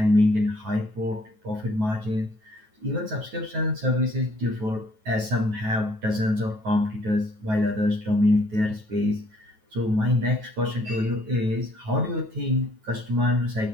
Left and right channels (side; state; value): left; late; 9.3 ms